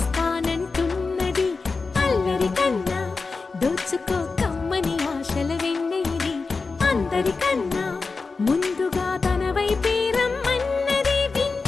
అల్లరి కన్నా దోచుకో కమ్మని ఆశల వెన్నెయిది అందరికన్నా ముందుగా తన వైపే రమ్మన్నది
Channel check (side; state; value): right; quieter; 4.2 dB